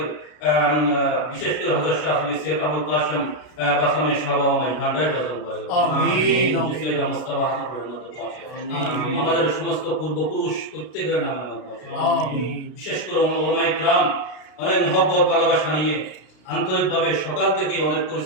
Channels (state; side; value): late; right; 33 ms